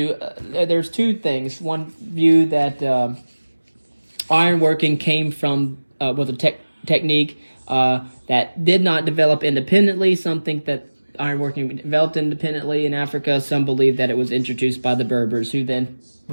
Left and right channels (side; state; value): both; inverted; correlation -1.00